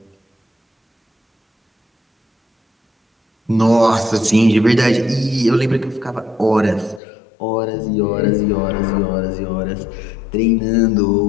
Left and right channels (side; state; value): right; drops out; at 7.0 s